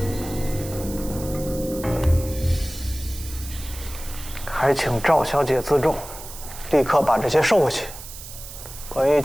还请赵小姐自重，立刻把这些收回去。关于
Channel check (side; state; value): right; noise; hiss, 13 dB below the sound